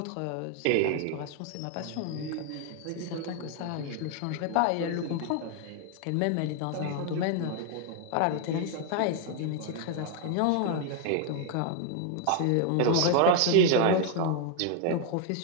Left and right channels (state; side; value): different; both; correlation 0.01